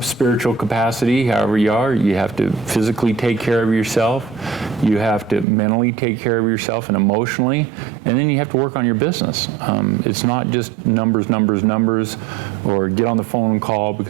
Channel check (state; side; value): drops out; left; at 5.5 s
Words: spiritual capacity, however you are. You have to physically take care of yourself. You have to mentally take care of yourself and emotionally. And then you have to work on your business. It's not just numbers, or get on the phone and call,